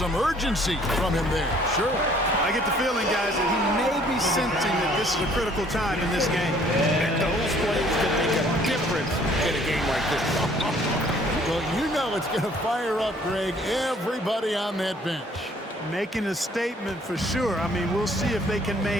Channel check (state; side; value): normal; both; correlation 0.59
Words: urgency from him there, sure. I get the feeling, guys, that he may be sensing that this is a critical time in this game. And those plays can make a difference in a game like this. Well, you know it's going to fire up, Greg, everybody on that bench. Making a statement for sure. I mean, we'll see if they can